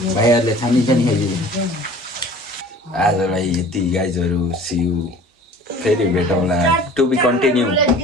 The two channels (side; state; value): both; normal; correlation 0.46